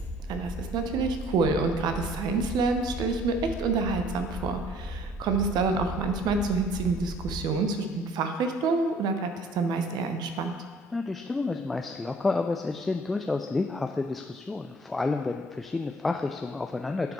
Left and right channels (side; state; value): both; normal; correlation 0.56